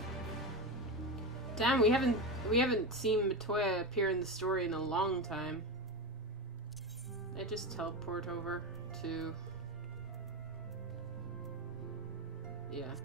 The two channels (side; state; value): both; normal; correlation 0.18